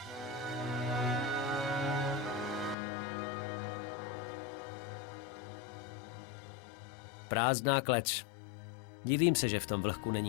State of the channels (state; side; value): drops out; right; at 2.8 s